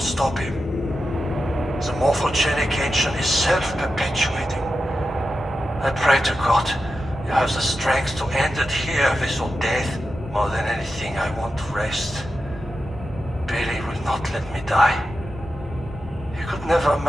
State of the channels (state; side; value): normal; both; correlation 0.90